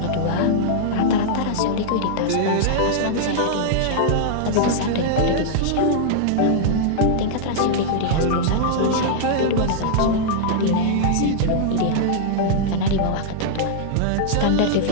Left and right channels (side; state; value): both; different; correlation -0.01